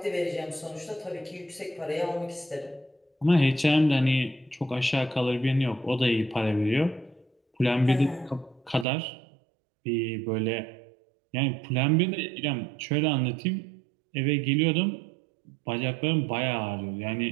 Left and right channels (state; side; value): drops out; left; at 8.8 s